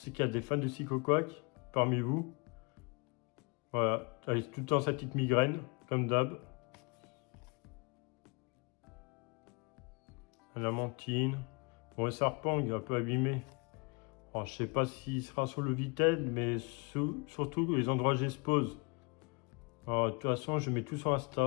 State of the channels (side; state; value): right; quieter; 31.4 dB